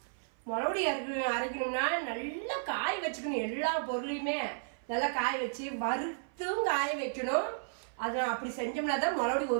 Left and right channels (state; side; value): silent; left; 55 dB below the other